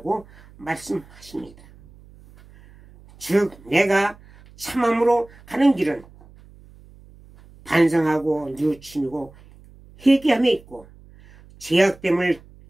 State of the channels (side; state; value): right; noise; hum, 24 dB below the sound